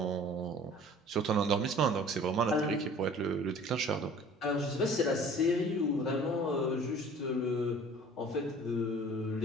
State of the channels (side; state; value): both; normal; correlation 0.48